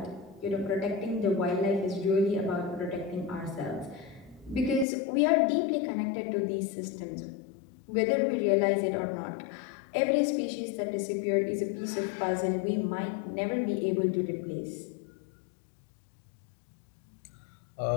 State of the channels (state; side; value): drops out; right; at 4.9 s